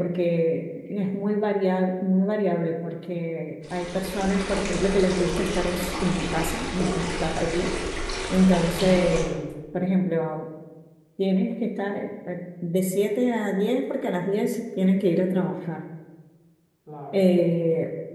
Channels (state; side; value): identical; both; correlation 1.00